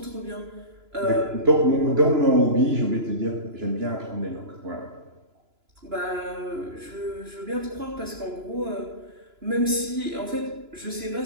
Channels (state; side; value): late; left; 2.9 ms